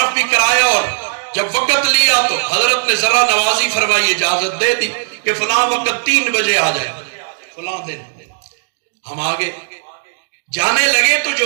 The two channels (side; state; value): left; silent; digital silence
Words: بھی کرایا، اور جب وقت لیا تو حضرت نے ذرا نوازی فرمائی، اجازت دے دی کہ فلاں وقت 3 بجے آ جائے، فلاں دن۔ ہم آگے جانے لگے تو